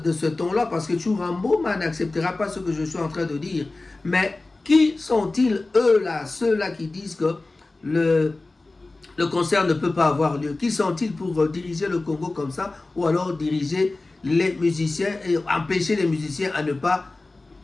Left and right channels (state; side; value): quieter; right; 3.2 dB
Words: ce ton-là, parce que Tchourambouma n'acceptera pas ce que je suis en train de dire. Mais qui sont-ils, eux-là, ceux-là qui disent que le concert ne peut pas avoir lieu? Qui sont-ils pour diriger le Congo comme ça, ou alors diriger les musiciens et empêcher les musiciens à ne pas